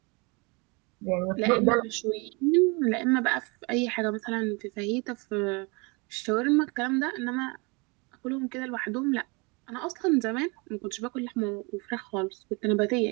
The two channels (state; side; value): quieter; left; 29.2 dB